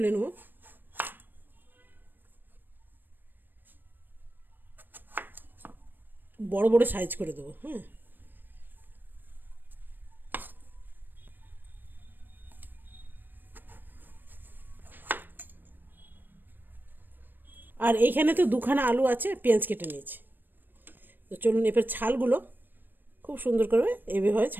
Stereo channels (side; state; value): left; late; 0.093 ms